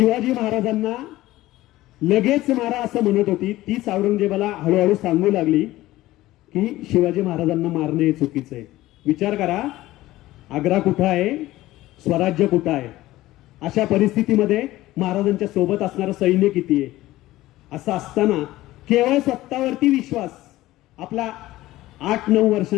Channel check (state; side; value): quieter; right; 16.6 dB